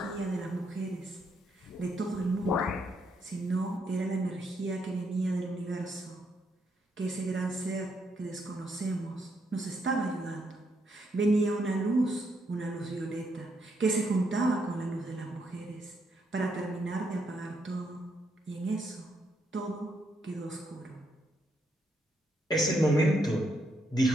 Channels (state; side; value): normal; both; correlation 0.77